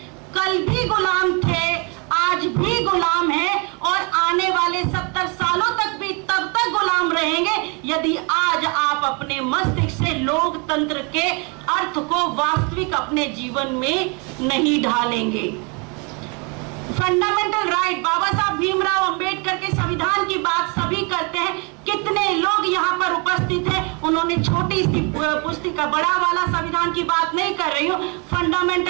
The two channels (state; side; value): quieter; left; 32.5 dB